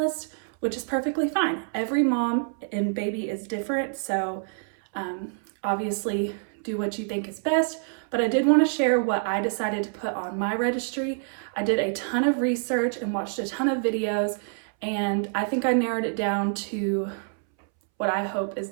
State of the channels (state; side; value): silent; left; 60 dB below the other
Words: which is perfectly fine. Every mom and baby is different, so obviously do what you think is best, but I did want to share what I decided to put on my registry. I did a ton of research and watched a ton of videos, and I think I narrowed it down to what I hope is